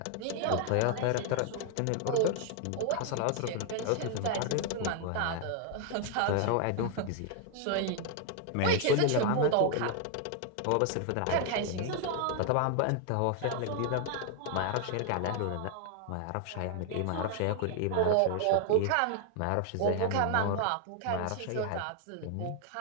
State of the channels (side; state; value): both; different; correlation 0.00